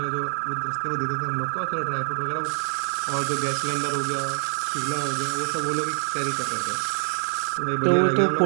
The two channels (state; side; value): silent; left; digital silence